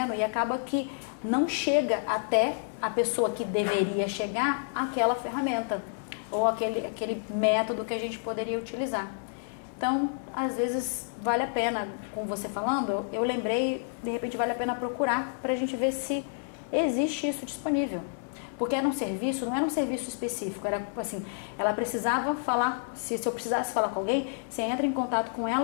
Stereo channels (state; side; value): silent; right; 58 dB below the other